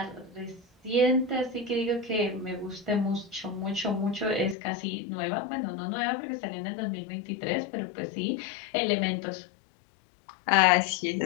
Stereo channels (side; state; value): right; drops out; at 4.5 s